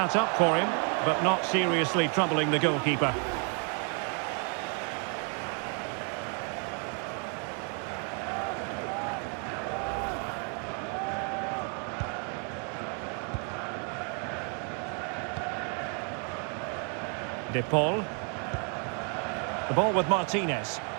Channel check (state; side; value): quieter; left; 39.6 dB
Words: up for him, but not seriously troubling the goalkeeper. De Paul. The ball with Martinez.